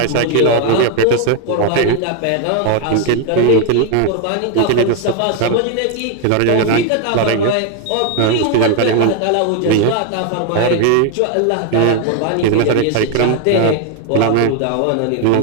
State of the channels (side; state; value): both; different; correlation 0.01